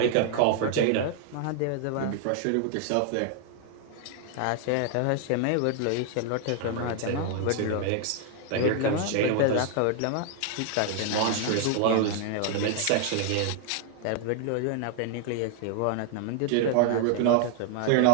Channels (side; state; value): both; different; correlation 0.00